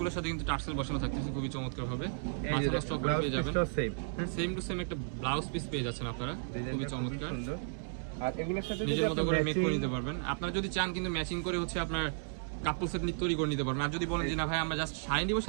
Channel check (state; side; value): silent; left; digital silence